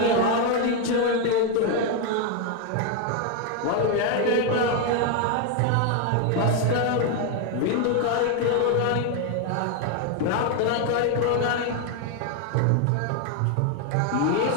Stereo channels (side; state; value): both; different; correlation 0.01